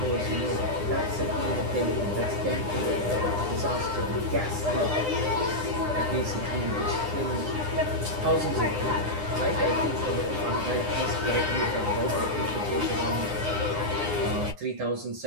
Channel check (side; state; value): left; late; 9.8 ms